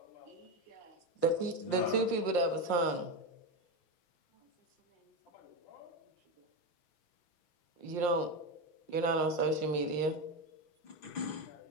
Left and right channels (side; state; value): right; late; 5.6 ms